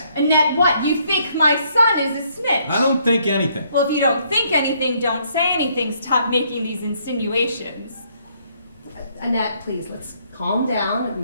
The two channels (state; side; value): inverted; both; correlation -0.69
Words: Annette, what? You think my son is a snitch? I don't think anything. Well, if you don't think anything, don't say anything. Stop making these insinuations. Annette, please, let's calm down.